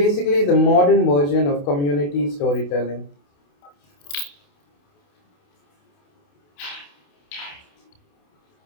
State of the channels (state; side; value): late; right; 28 ms